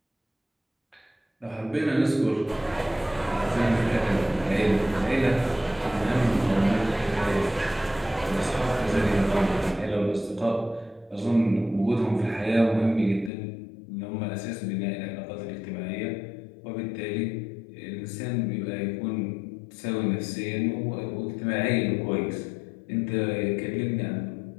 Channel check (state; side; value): drops out; right; at 13.3 s